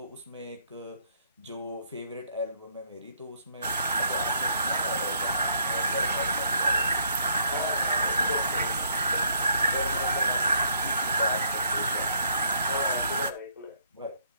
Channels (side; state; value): both; inverted; correlation -0.69